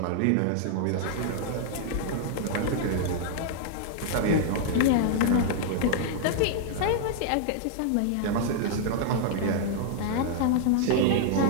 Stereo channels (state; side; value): different; both; correlation -0.01